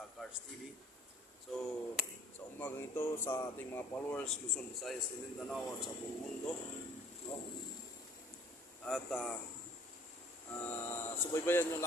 Cars TV. So sa umagang ito sa ating mga followers Luzon, Visayas, Mindanao at sa buong mundo, no? At subaybayan niyo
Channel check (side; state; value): both; normal; correlation 0.54